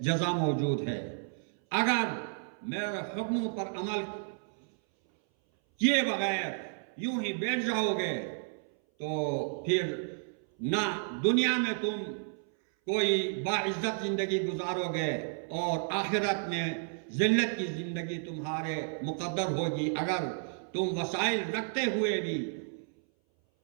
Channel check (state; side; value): silent; left; 57 dB below the other